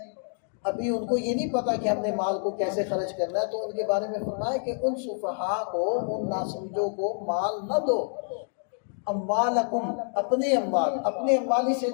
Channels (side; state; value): right; silent; 57 dB below the other